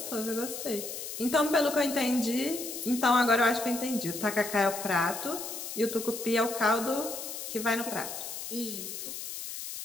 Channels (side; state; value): left; noise; hiss, 7 dB below the sound